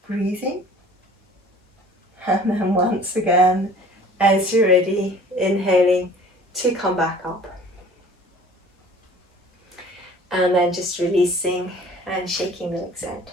breathing. And then once again, as you're ready, inhaling to come back up. And then just releasing and shaking the legs out.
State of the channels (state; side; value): normal; both; correlation 0.48